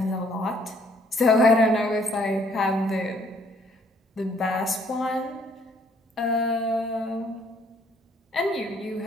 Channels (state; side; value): normal; both; correlation 0.63